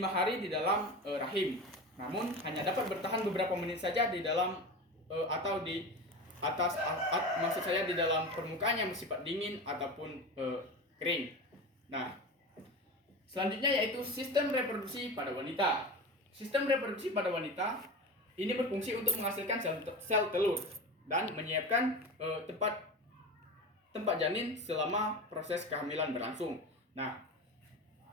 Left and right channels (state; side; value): normal; both; correlation 0.28